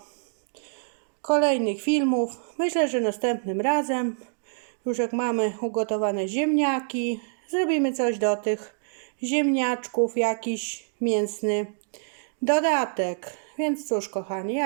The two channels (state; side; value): silent; left; digital silence